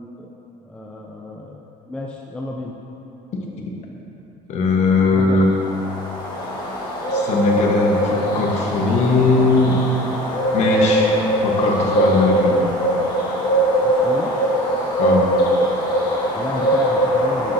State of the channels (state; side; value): normal; both; correlation 0.43